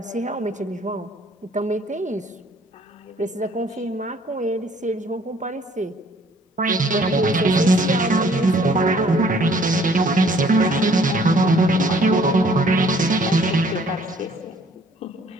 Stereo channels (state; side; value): normal; both; correlation 0.59